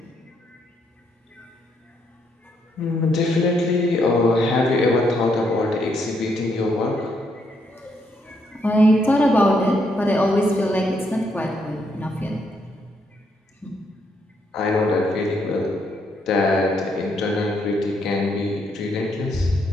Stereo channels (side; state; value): both; normal; correlation 0.75